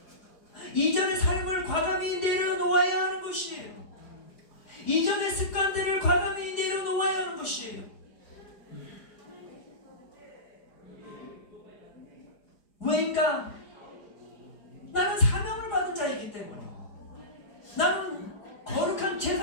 이전의 삶을 과감히 내려놓아야 하는 것이에요. 이전의 습관들을 과감히 내려놓아야 하는 것이에요. 왜인가? 나는 사명을 받은 자이기 때문에. 나는 거룩한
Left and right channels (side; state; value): right; late; 4.9 ms